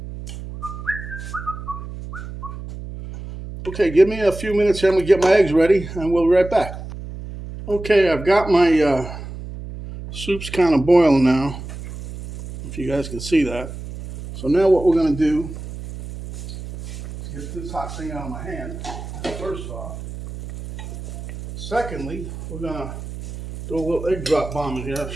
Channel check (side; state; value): right; noise; hum, 10 dB below the sound